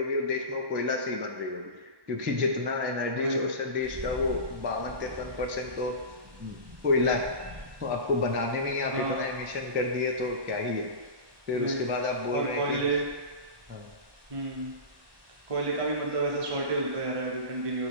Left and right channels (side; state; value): left; late; 1.1 ms